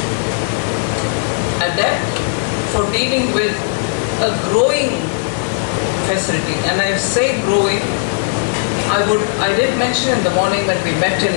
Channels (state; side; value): silent; right; 56 dB below the other